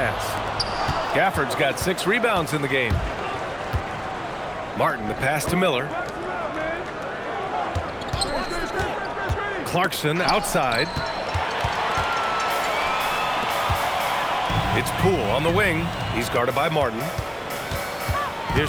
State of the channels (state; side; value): identical; both; correlation 1.00